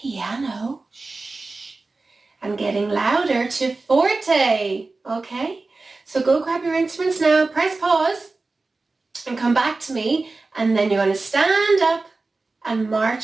and getting louder to forte, okay? So go grab your instruments now, press pause and come back to me, and then you're going to stand up and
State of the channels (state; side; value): quieter; left; 3.5 dB